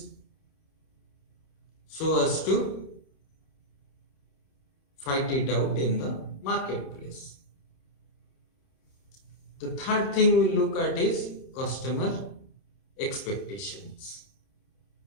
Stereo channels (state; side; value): late; right; 29 ms